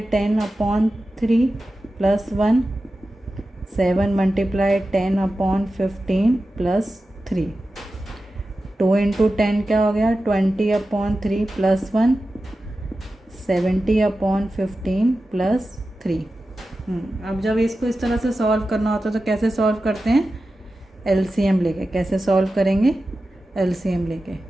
10/3 प्लस 1, 7 × 10/15 प्लस 3। 2 इंटू 10 क्या हो गया, 20/3 प्लस 1, 70/15 प्लस 3। अब जब इसको इस तरह से सॉल्व करना होता है तो कैसे सॉल्व करते हैं, LCM लेके। कैसे सॉल्व करेंगे, LCM लेके।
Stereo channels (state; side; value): normal; both; correlation 0.93